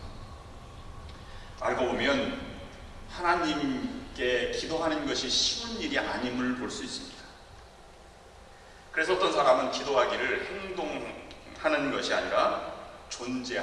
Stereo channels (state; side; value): identical; both; correlation 1.00